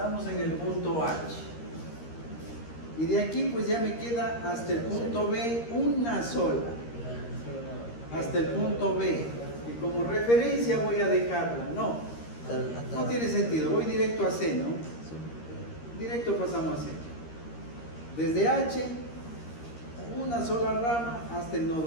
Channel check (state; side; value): late; right; 13 ms